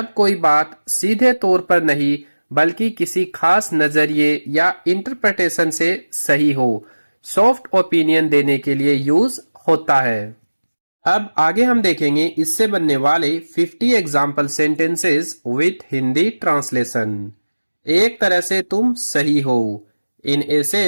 कोई बात सीधे तौर पर नहीं बल्कि किसी खास नजरिए या इंटरप्रिटेशन से सही हो, सॉफ्ट ओपिनियन देने के लिए यूज होता है। अब आगे हम देखेंगे इससे बनने वाले 50 example sentences with Hindi translation. एक तरह से तुम सही हो, in a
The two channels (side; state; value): both; inverted; correlation -1.00